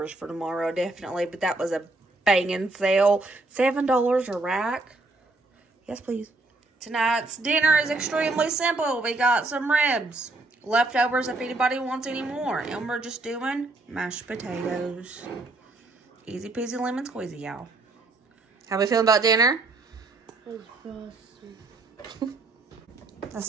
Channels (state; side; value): quieter; left; 3.1 dB